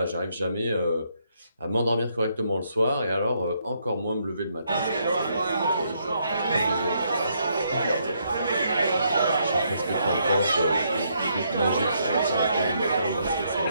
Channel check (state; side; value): inverted; both; correlation -0.74